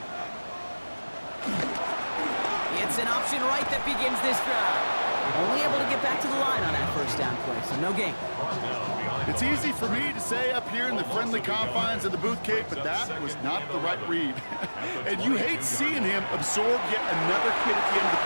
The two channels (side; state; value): both; inverted; correlation -1.00